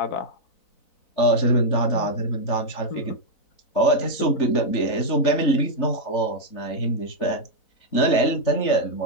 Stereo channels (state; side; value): late; right; 4.0 ms